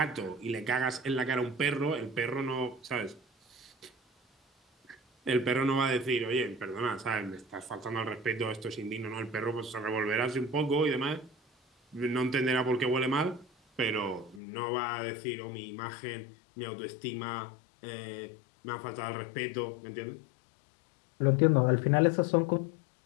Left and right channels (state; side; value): drops out; right; at 14.4 s